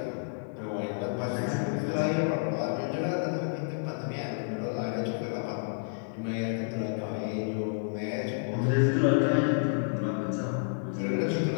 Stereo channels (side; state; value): right; silent; digital silence